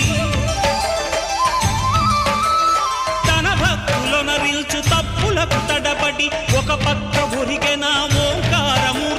తన భక్తులనరిల్చు తప్పులకు తడబడి ఒక పక్క ఒరిగెన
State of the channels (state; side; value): identical; both; correlation 1.00